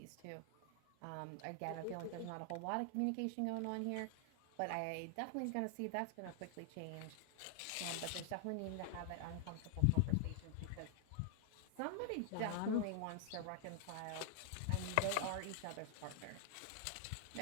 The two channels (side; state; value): both; different; correlation 0.00